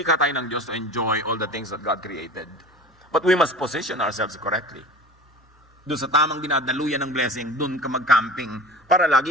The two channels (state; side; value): normal; both; correlation 0.37